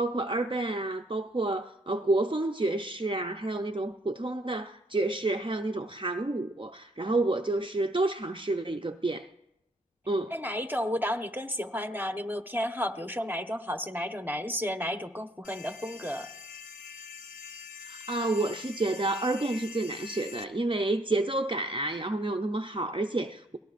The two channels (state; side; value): normal; both; correlation 0.66